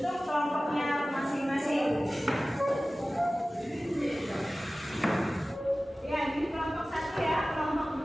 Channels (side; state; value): both; normal; correlation 0.97